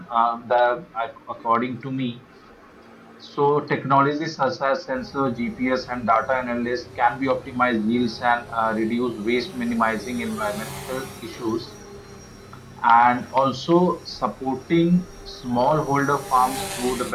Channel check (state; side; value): identical; both; correlation 1.00